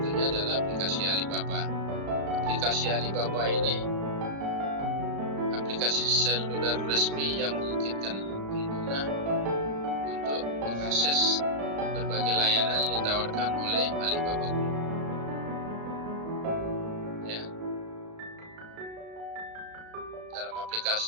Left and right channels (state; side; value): late; left; 35 ms